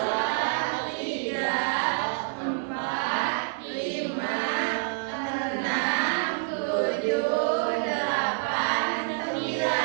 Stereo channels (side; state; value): left; silent; 60 dB below the other